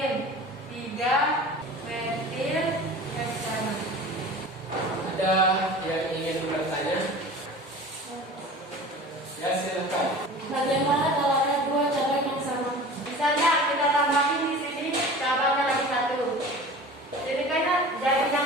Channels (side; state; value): both; normal; correlation 0.39